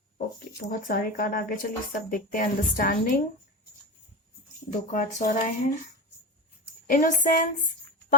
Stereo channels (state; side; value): normal; both; correlation 0.22